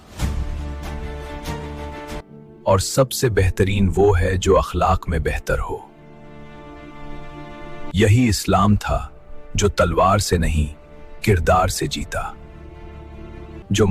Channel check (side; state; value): both; identical; correlation 1.00